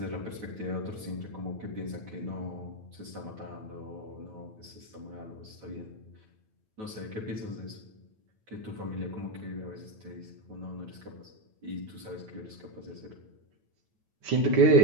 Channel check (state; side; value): late; left; 9.2 ms